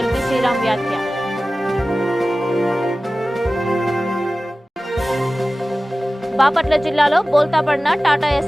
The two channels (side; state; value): both; normal; correlation 0.96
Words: శ్రీరామ్ వ్యాఖ్య. బాపట్ల జిల్లాలో బోల్తాపడిన టాటా